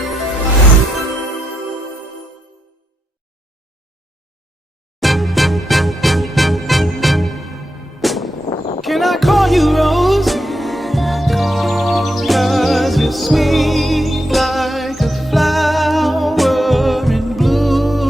I call you Rose? 'Cause you're sweet like a flower in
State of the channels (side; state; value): both; normal; correlation 0.83